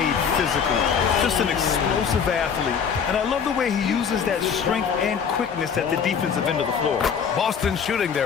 physically. Just an explosive athlete. And I love the way he uses that strength and quickness at the defensive end of the floor. Boston shooting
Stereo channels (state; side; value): quieter; right; 6.8 dB